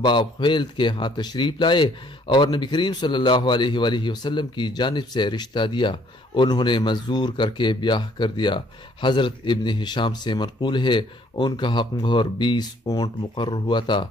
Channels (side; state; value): both; normal; correlation 0.63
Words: باپ خیلد کے ہاں تشریف لائے اور نبی کریم صلی اللہ علیہ وآلہ وسلم کی جانب سے رشتہ دیا۔ انہوں نے منظور کر کے بیاہ کر دیا۔ حضرت ابن ہشام سے منقول ہے ان کا حق مہر 20 اونٹ مقرر ہوا تھا،